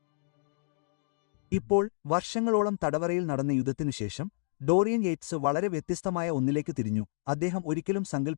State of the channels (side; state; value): right; silent; digital silence